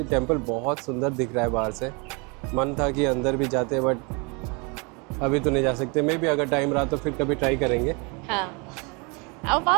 टेंपल बहुत सुंदर दिख रहा है बाहर से. मन था कि अंदर भी जाते, बट अभी तो नहीं जा सकते. मे भी अगर टाइम रहा तो फिर कभी ट्राई करेंगे. हाँ, अब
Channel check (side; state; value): left; quieter; 30.9 dB